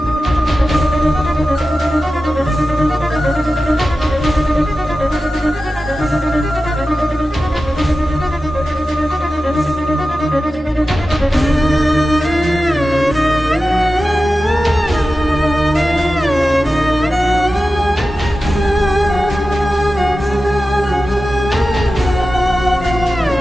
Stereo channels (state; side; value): normal; both; correlation 0.94